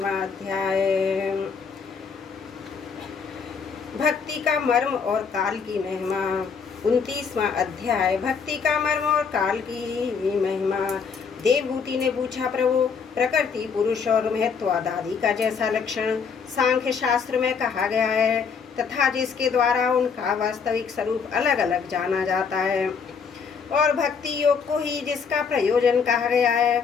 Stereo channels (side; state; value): right; quieter; 5.9 dB